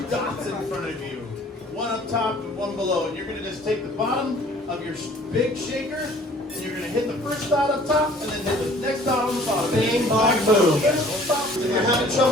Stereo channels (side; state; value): both; normal; correlation 0.53